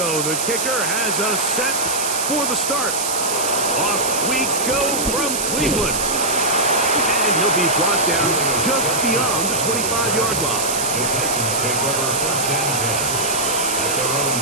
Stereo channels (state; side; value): noise; right; hiss, 1 dB below the sound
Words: The kicker has us set for the start. Off we go from Cleveland. And he'll be brought down just beyond the 25-yard line. The Titans take over first and 10 at their own